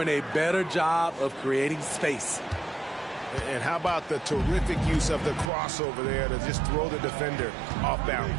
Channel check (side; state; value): left; drops out; at 5.5 s